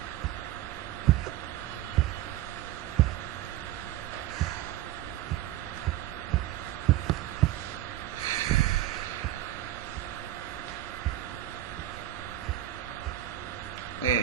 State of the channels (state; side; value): quieter; left; 13.8 dB